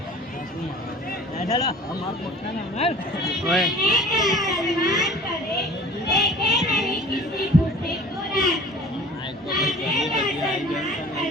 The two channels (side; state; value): both; normal; correlation 0.45